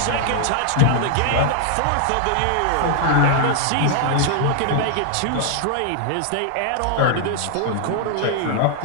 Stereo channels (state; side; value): different; both; correlation 0.00